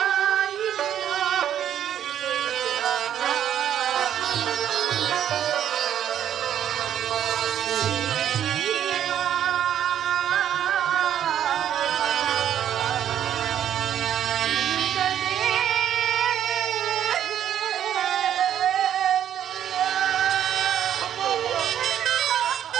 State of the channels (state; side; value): quieter; left; 10.2 dB